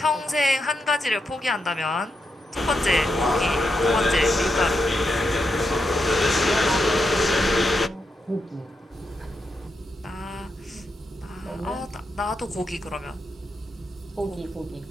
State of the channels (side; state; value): both; normal; correlation 0.84